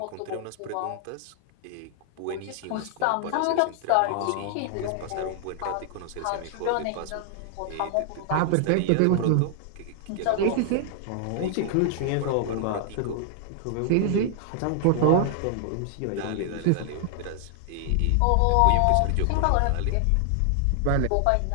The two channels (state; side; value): different; both; correlation 0.00